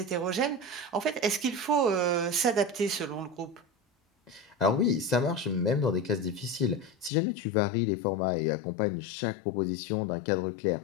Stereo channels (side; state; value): right; drops out; at 7.1 s